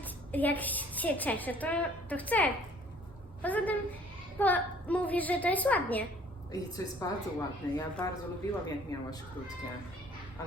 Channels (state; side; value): normal; both; correlation 0.56